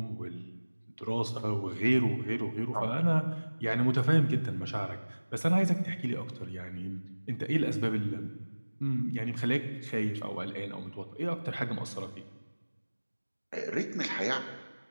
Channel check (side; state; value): both; inverted; correlation -1.00